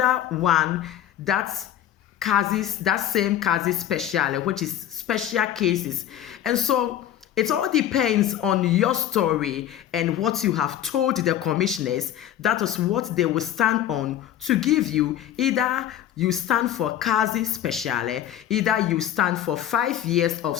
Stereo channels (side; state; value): right; quieter; 11.3 dB